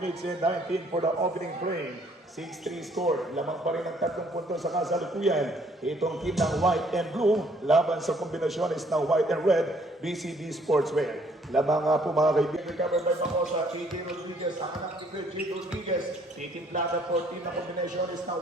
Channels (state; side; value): normal; both; correlation 0.63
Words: and 19 for the opening frame. 6-3 score. Lamang pa rin ang 3 puntos sa kasalukuyan. Itong team ng White and Blue, laban sa kombinasyones ng White and Red, BCB Sportswear. Lamang nga po mga kaibigan. Recovered by Bacosa, AJ Rodriguez, ang anak ni AJ Rodriguez. Titimplada for team ng kombinasyones ng